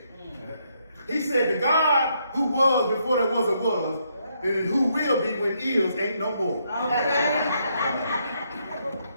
He said, the God who was before there was a was, and who will be when is ain't no more. Okay.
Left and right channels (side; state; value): both; inverted; correlation -0.75